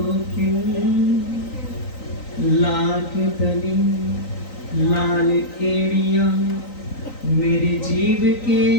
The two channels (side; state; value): right; late; 3.9 ms